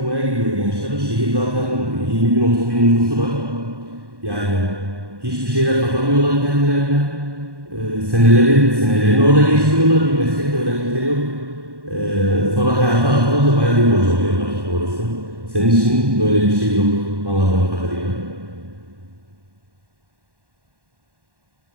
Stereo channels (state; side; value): late; left; 1.1 ms